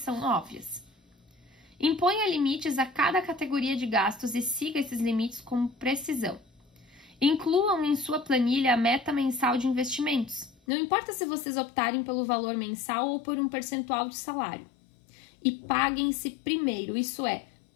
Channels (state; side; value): drops out; right; at 10.6 s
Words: óbvias. Imponha limites a cada categoria de gastos e siga esses limites com precisão. Incluam em sua planilha a meta mensal de investimentos. Não importa se vocês optarem pelo valor mensal ou por um percentual de salário. E paguem-se primeiro, isso é,